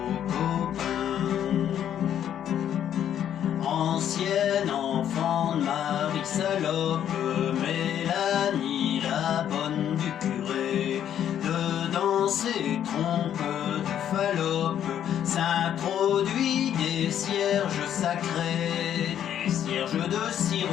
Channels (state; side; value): quieter; right; 10.0 dB